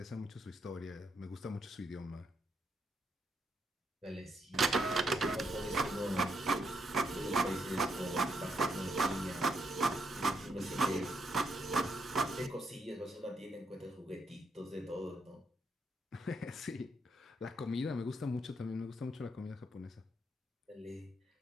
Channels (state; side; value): normal; both; correlation 0.77